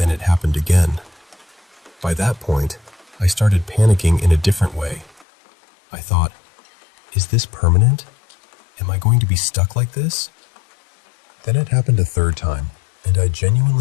it happened again. By that point, I started panicking in a different way. I thought, is this permanent? Am I going to be stuck like this? Then it happened a third time, and I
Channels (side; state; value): right; drops out; at 5.2 s